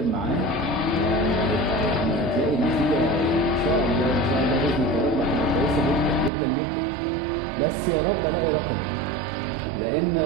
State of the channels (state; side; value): drops out; left; at 6.3 s